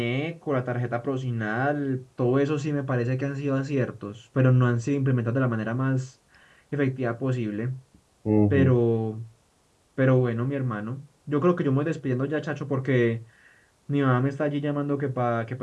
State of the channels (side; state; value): both; identical; correlation 1.00